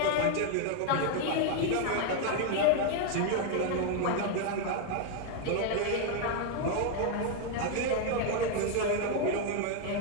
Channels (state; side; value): different; both; correlation 0.01